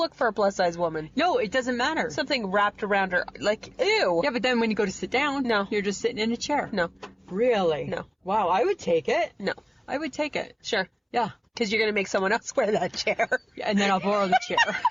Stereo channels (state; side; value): identical; both; correlation 1.00